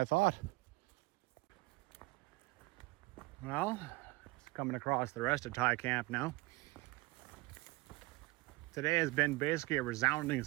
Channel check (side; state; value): left; quieter; 22.8 dB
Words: thought. Well, coming across the rest of Thai Camp now. Today has been basically a resounding